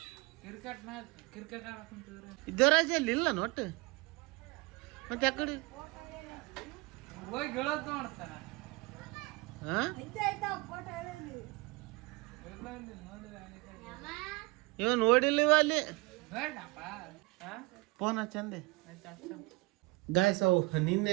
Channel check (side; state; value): left; quieter; 25.0 dB